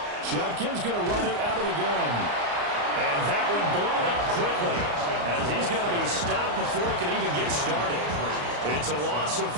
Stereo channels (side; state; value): left; late; 34 ms